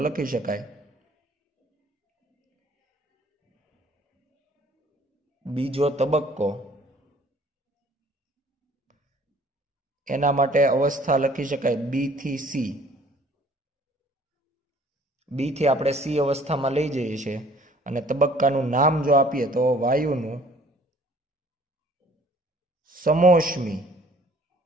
લખી શકાય બીજો તબક્કો, એના માટે અવસ્થા લખી શકાય B થી C. B થી આપણે C અવસ્થામાં લઈ જઈએ છીએ, અને તબક્કાનું નામ જો આપીએ તો વાયુનું સમોષ્મી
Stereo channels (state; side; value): normal; both; correlation 0.55